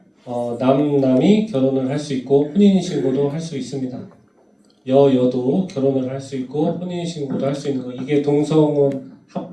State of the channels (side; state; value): both; identical; correlation 1.00